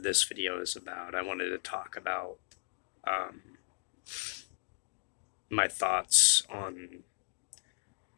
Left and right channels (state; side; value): silent; right; 54 dB below the other